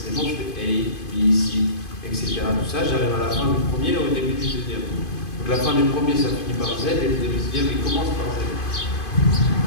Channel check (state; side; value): late; right; 2.5 ms